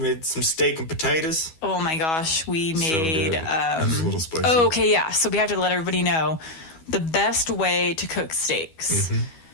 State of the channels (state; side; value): late; right; 12 ms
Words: some steak and potatoes. Oh my gosh, we made It was a little spicy. oh, okay, yeah. So we have to let everybody know the best way to cook steaks.